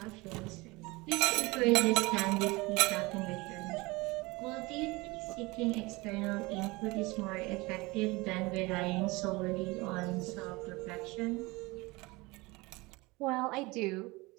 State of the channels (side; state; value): left; quieter; 23.4 dB